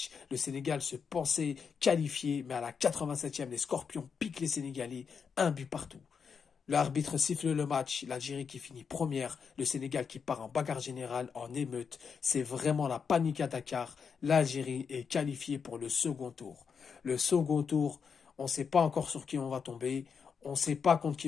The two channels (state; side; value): quieter; right; 6.2 dB